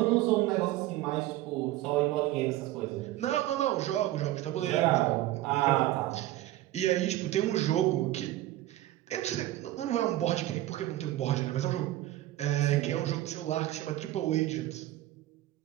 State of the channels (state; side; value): quieter; left; 15.4 dB